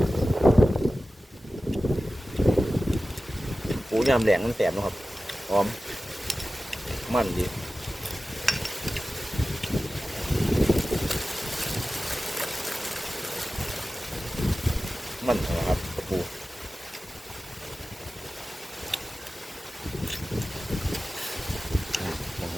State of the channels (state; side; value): normal; both; correlation 0.95